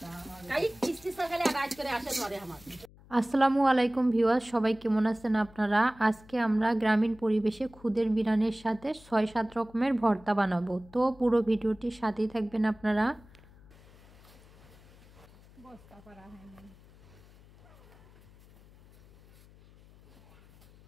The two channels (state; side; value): noise; left; hum, 25 dB below the sound